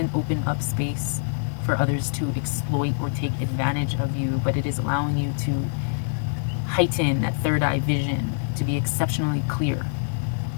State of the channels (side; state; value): right; silent; digital silence